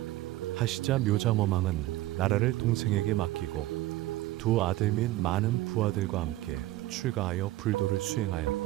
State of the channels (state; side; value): quieter; left; 16.6 dB